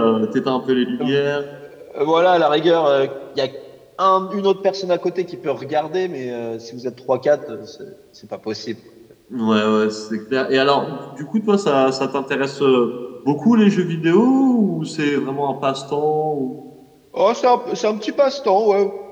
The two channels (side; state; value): both; identical; correlation 1.00